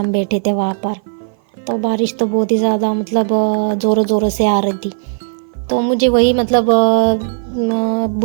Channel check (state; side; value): silent; left; 55 dB below the other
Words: बैठे थे वहाँ पर। तो बारिश तो बहुत ही ज़्यादा मतलब ज़ोरों ज़ोरों से आ रही थी। तो मुझे वही मतलब